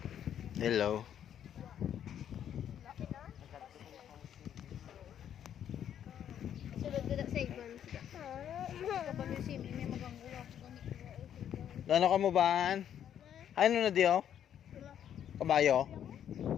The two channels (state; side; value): quieter; right; 9.7 dB